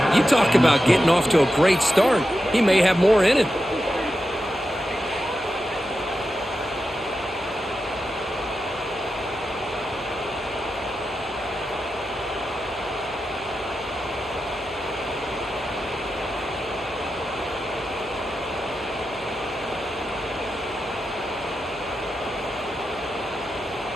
You talk about getting off to a great start. He may have more in it.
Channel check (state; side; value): noise; left; hum, 23 dB below the sound